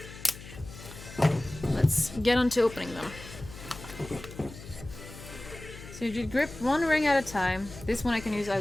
Let's get on to opening them. So you grip one ring at a time. This one I can use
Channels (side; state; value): left; noise; hum, 15 dB below the sound